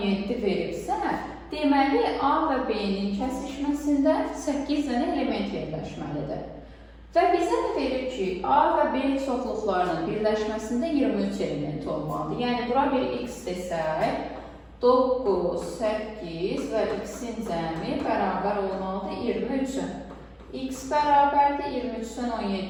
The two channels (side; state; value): both; identical; correlation 1.00